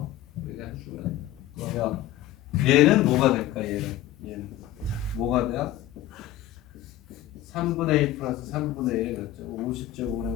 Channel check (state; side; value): quieter; right; 13.4 dB